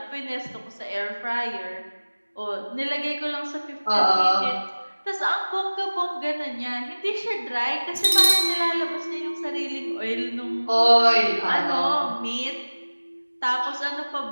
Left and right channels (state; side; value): inverted; both; correlation -1.00